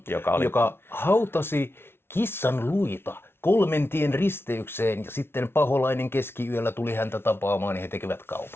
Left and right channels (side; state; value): right; late; 0.12 ms